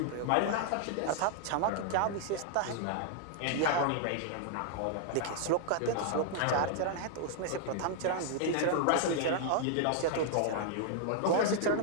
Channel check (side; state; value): both; different; correlation -0.01